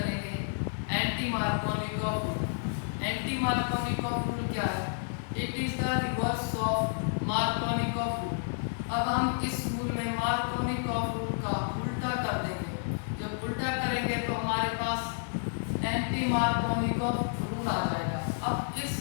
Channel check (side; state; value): right; silent; 57 dB below the other